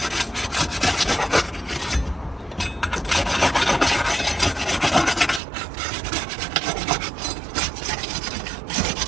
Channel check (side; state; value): left; drops out; at 5.4 s